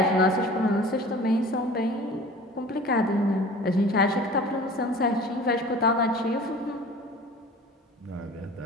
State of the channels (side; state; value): both; normal; correlation 0.43